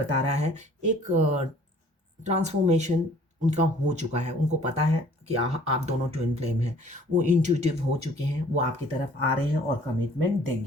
रहा है एक ट्रांसफ़ॉर्मेशन उनका हो चुका है। उनको पता है कि आप दोनों ट्विन फ्लेम हैं। वो इंट्यूटिव हो चुके हैं, वो आपकी तरफ आ रहे हैं और कमिटमेंट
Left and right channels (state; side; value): normal; both; correlation 0.54